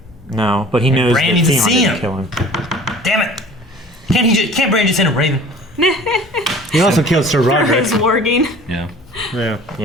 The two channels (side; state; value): both; normal; correlation 0.46